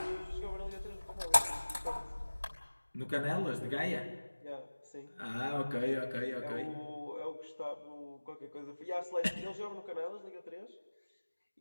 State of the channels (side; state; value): both; inverted; correlation -1.00